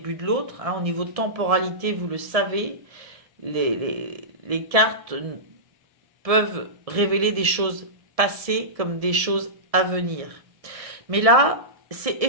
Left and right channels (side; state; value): left; late; 1.7 ms